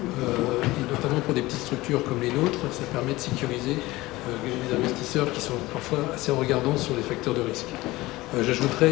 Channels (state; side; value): quieter; right; 19.3 dB